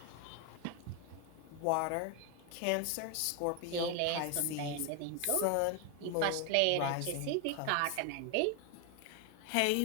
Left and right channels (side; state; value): both; different; correlation 0.01